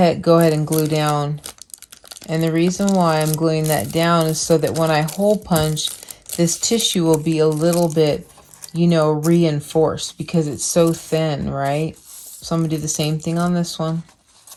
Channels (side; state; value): both; identical; correlation 1.00